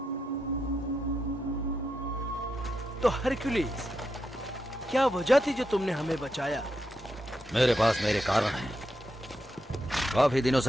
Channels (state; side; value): normal; both; correlation 0.84